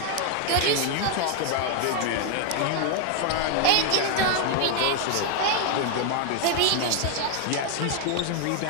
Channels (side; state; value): both; different; correlation 0.01